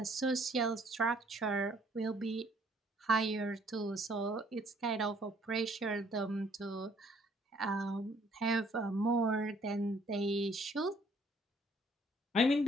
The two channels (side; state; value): both; normal; correlation 0.63